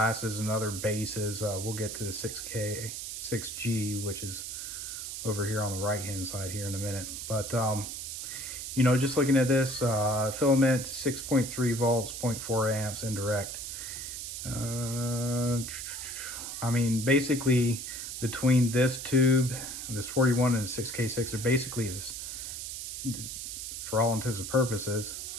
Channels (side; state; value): right; noise; hiss, 6 dB below the sound